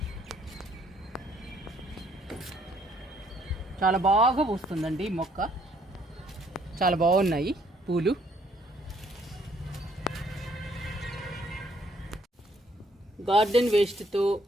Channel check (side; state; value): both; normal; correlation 0.66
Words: చాలా బాగా పూస్తుందండి. మొక్క చాలా బాగున్నాయి పూలు. గార్డెన్ వేస్ట్తో,